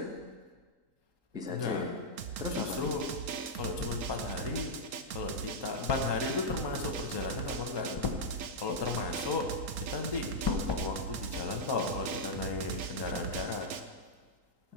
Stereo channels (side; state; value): left; late; 3.8 ms